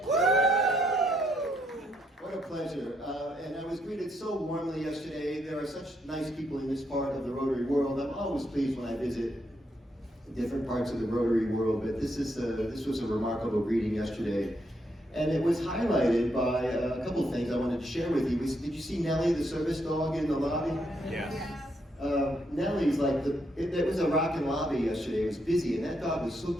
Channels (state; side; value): normal; both; correlation 0.77